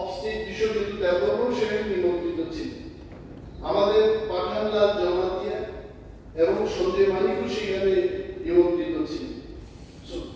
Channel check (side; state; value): both; identical; correlation 1.00